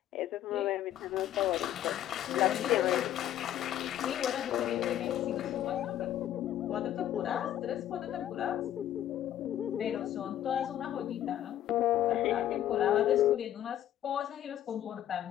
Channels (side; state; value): right; quieter; 11.8 dB